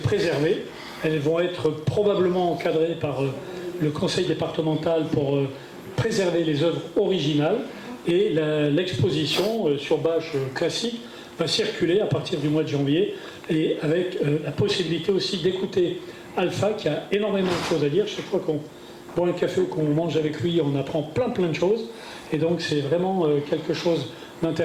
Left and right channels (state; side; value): identical; both; correlation 1.00